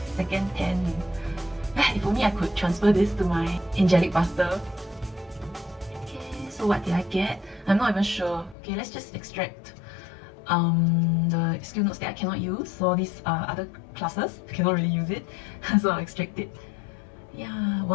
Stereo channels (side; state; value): right; drops out; at 8.6 s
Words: second 10. If only I could transfer this to my Angelic Buster. Okay, so what did I get? I'm not even sure. Okay, let's just extract the skill notes that I cannot use. So these are other classes, I cannot really use it. So I'll extract it. Yeah,